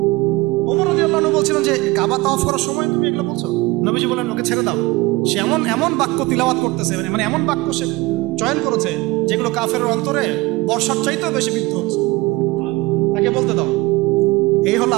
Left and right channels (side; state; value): left; quieter; 21.6 dB